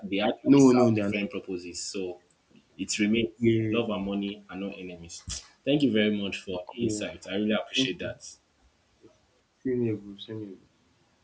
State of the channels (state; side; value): identical; both; correlation 1.00